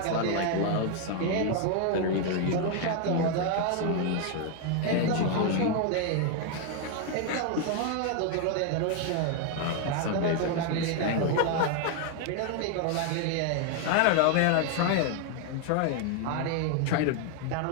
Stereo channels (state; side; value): different; both; correlation 0.01